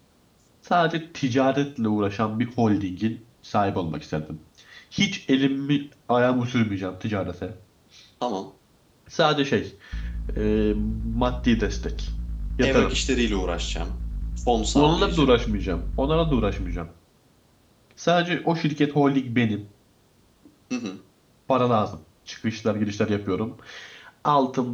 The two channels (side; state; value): both; identical; correlation 1.00